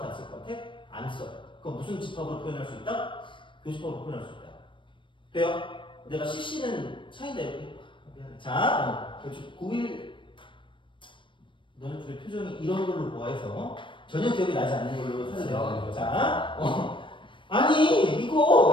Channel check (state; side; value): late; right; 0.24 ms